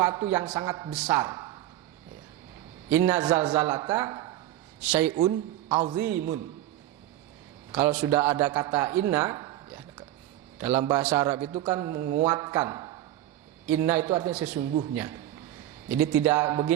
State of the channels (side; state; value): left; quieter; 13.9 dB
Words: yang sangat besar. Inna zalzalata syai'un azimun. Kalau sudah ada kata inna ya, dalam bahasa Arab itu kan menguatkan. Inna itu artinya sesungguhnya. Jadi tidak